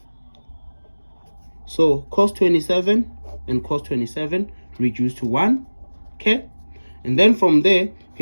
So cos 27 and cos 27 reduce to 1. Okay, and then from there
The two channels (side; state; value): both; inverted; correlation -1.00